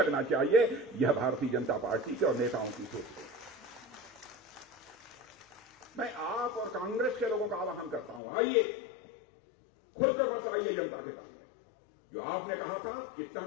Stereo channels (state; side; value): drops out; right; at 8.2 s